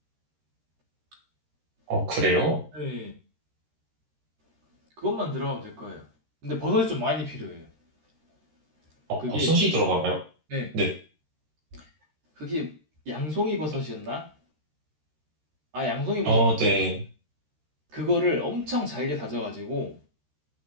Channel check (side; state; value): left; late; 13 ms